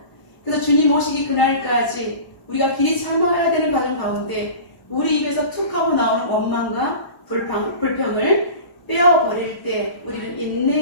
그래서 주님 오시기 그날까지 우리가 길이 참아야 되는 과정 가운데 우리 입에서 툭 하고 나오는 원망과 불평을 빼어버릴 때 우리는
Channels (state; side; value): late; right; 1.0 ms